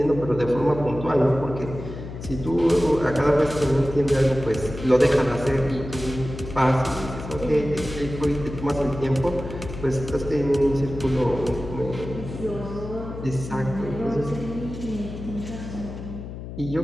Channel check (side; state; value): left; noise; hum, 10 dB below the sound